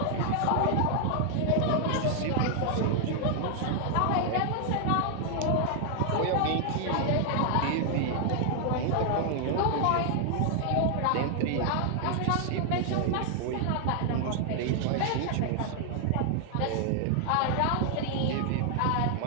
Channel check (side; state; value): both; different; correlation 0.00